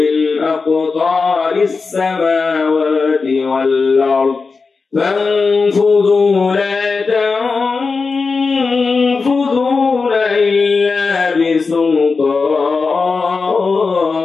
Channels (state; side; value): quieter; right; 4.5 dB